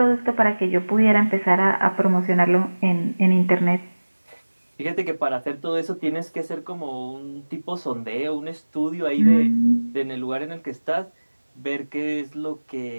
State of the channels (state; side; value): inverted; both; correlation -1.00